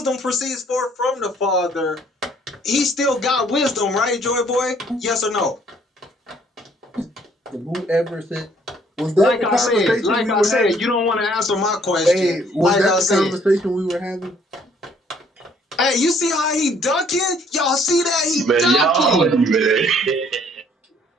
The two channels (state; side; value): normal; both; correlation 0.62